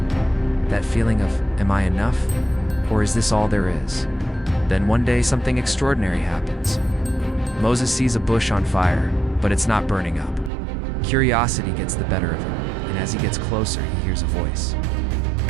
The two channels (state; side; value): drops out; left; at 10.5 s